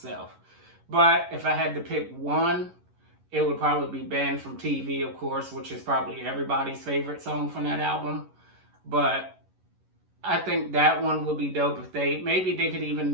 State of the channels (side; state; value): left; late; 11 ms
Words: But if I had to pick one, it would probably be Banned from TV, of course, which is probably everybody's favorite song from that album. But I think that one would be dope if maybe they could